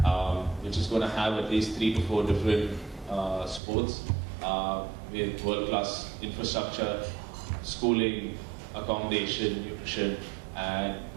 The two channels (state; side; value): drops out; left; at 3.6 s